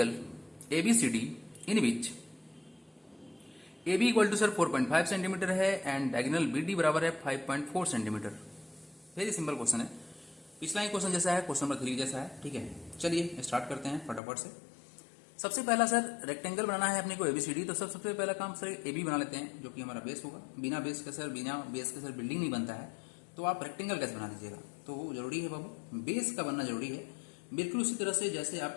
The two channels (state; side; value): drops out; right; at 14.2 s